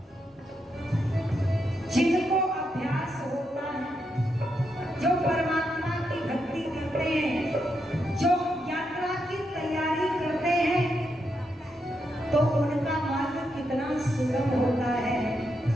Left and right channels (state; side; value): normal; both; correlation 0.82